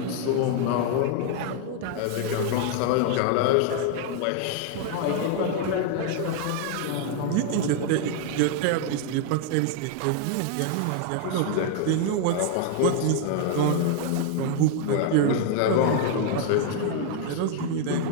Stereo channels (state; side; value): different; both; correlation 0.00